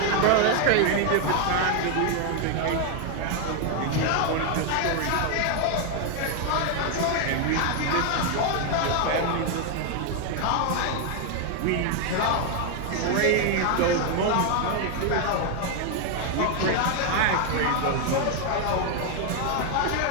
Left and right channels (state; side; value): different; both; correlation 0.01